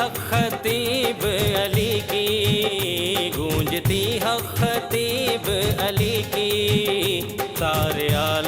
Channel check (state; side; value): identical; both; correlation 1.00